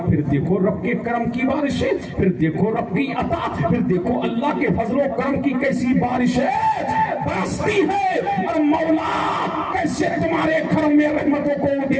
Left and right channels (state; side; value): identical; both; correlation 1.00